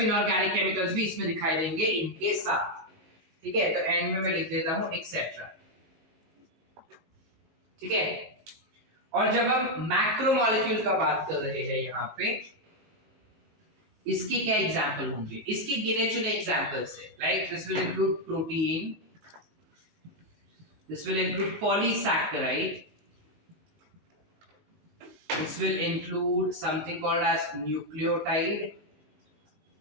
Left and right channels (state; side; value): late; left; 19 ms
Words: इनऑर्गेनिक केमिकल्स भी इसमें दिखाई देंगे इनके साथ. ठीक है? तो एंड में मैं लिख देता हूं एक्सेट्रा. ठीक है? और जब हम मैक्रोमोलेक्यूल का बात कर रहे हैं यहाँ पे, इसके क्या एग्जाम्पल होंगे? इसके गिने चुने एग्जाम्पल्स है. Like this will include protein, this will include polysaccharide, this will include something called as nucleotide.